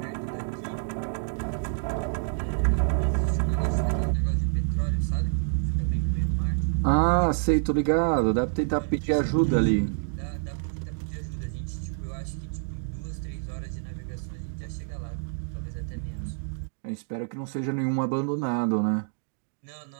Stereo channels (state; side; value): silent; left; digital silence